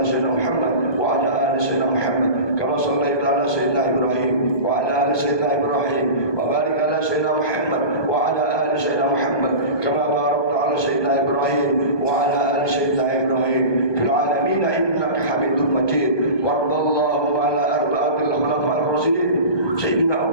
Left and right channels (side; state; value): right; late; 1.2 ms